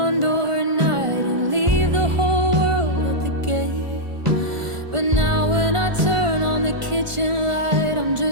door at night and leave the whole world at the gate. But now when I turn on the kitchen light, I'm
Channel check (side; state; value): left; late; 1.5 ms